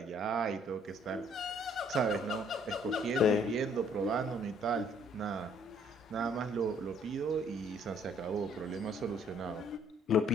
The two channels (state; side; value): normal; both; correlation 0.62